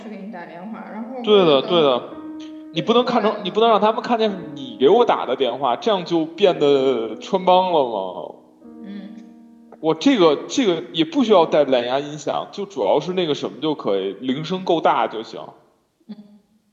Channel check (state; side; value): identical; both; correlation 1.00